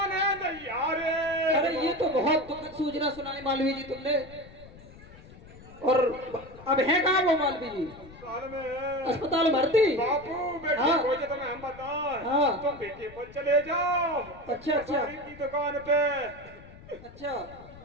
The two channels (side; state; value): left; noise; rumble, 19 dB below the sound